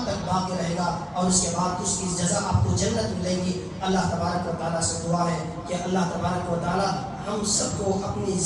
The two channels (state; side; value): identical; both; correlation 1.00